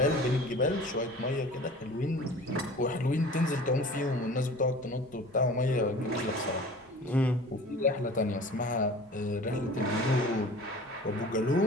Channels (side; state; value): both; normal; correlation 0.42